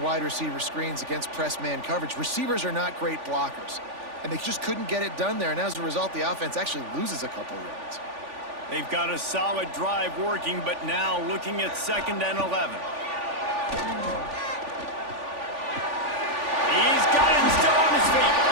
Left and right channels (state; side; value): late; left; 3.5 ms